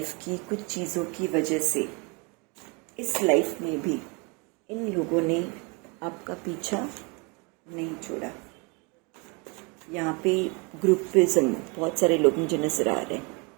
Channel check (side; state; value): left; quieter; 30.4 dB